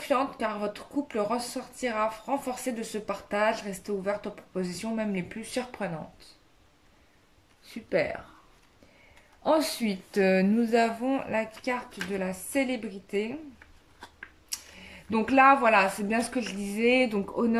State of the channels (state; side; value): identical; both; correlation 1.00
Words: car votre couple ressortira renforcé de ce partage. Restez ouverte aux propositions, même les plus surprenantes. Super. Ensuite, nous avons la carte de la célébrité. Donc là, voilà, c'est bien ce que je disais. Donc